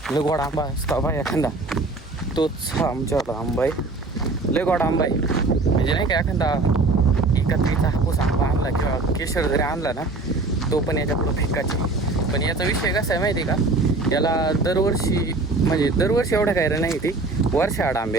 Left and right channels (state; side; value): quieter; left; 3.4 dB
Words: लय गोड आंबा असतो बा एखादा, तोच हा आमच्यावाला आंबा आहे. लय गोड आंबा आहे म्हणजे नाही का, एखादा एकत्रीचा हापूस आंबा आणला किंवा केशर जरी आणला ना, तो पण याच्या पुढं फिक्काचे. पण याचा विषय कसा आहे माहिती आहे का, याला दरवर्षी म्हणजे दरवर्षी एवढं काय रे नाही, ती वर्षाआड आंबे